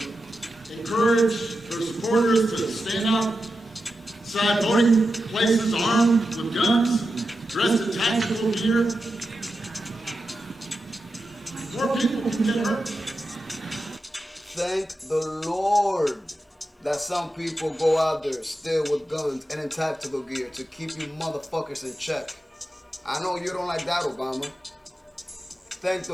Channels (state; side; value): normal; both; correlation 0.90